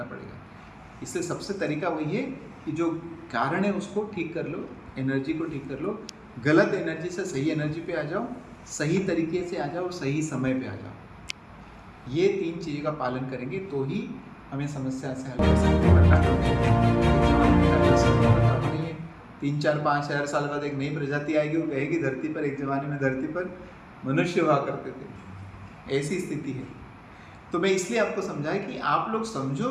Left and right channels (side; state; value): both; identical; correlation 1.00